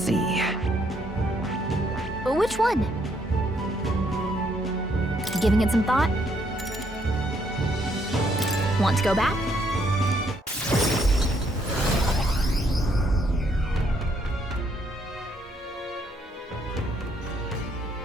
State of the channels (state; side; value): normal; both; correlation 0.71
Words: Which one? Giving it some thought? Want to go back?